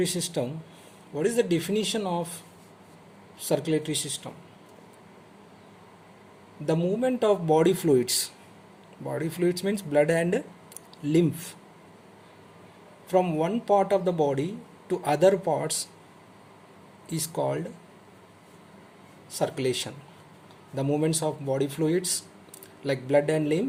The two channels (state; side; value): identical; both; correlation 1.00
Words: system, what is the definition of circulatory system? The movement of body fluids. Body fluids means blood and lymph from one part of the body to other parts is called circulation. The movements of body fluids like blood and